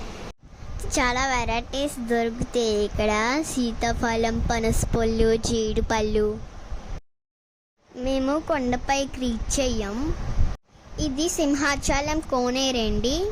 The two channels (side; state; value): both; identical; correlation 1.00